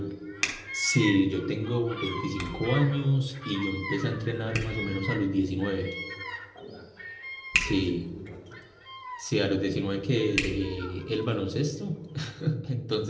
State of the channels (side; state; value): both; identical; correlation 1.00